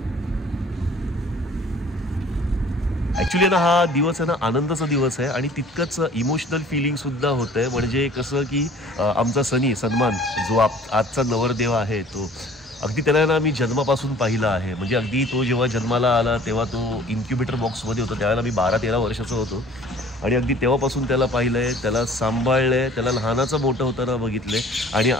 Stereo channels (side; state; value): both; normal; correlation 0.50